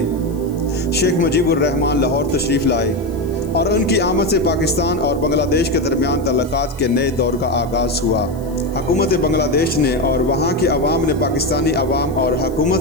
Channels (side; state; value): left; noise; hiss, 25 dB below the sound